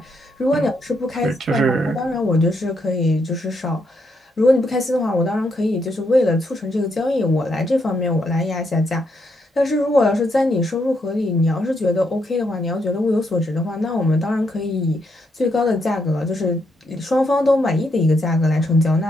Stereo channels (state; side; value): normal; both; correlation 0.78